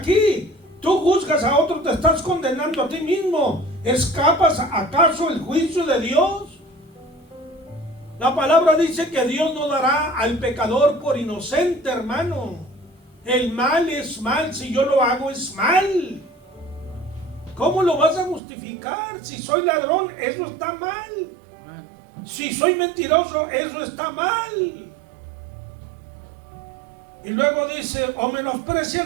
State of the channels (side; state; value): left; drops out; at 18.4 s